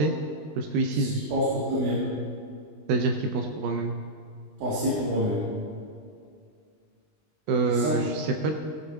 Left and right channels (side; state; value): left; late; 20 ms